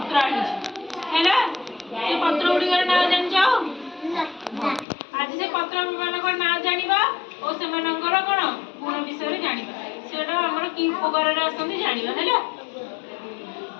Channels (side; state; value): right; drops out; at 4.9 s